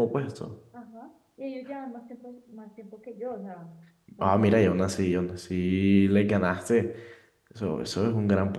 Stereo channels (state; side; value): identical; both; correlation 1.00